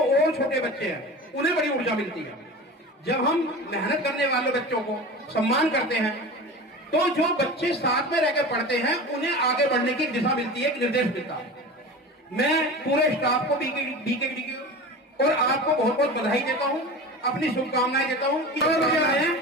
छोटे बच्चे हैं उन्हें बड़ी ऊर्जा मिलती है। जब हम मेहनत करने वाले बच्चों को सम्मान करते हैं तो जो बच्चे साथ में रहकर पढ़ते हैं उन्हें आगे बढ़ने की दिशा मिलती है, एक निर्देश मिलता है। मैं पूरे स्टाफ को बीकेडी की और आपको बहुत बहुत बधाई देता हूं, अपनी शुभकामनाएं देता हूं।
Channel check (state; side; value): normal; both; correlation 0.33